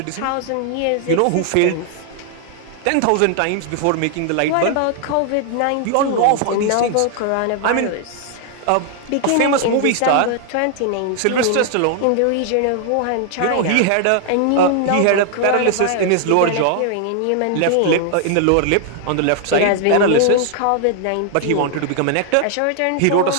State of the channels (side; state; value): both; different; correlation 0.00